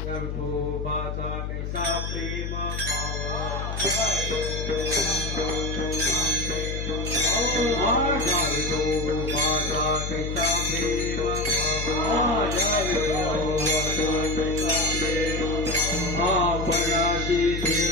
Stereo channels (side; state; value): left; noise; hum, 4 dB below the sound